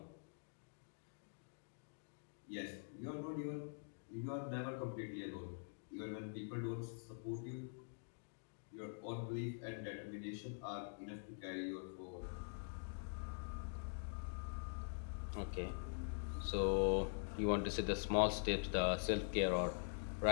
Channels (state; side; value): silent; right; digital silence